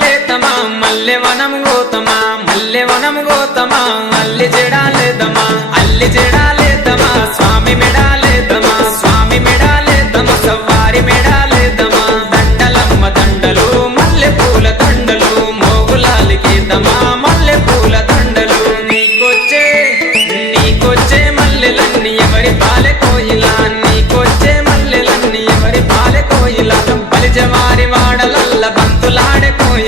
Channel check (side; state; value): both; normal; correlation 0.52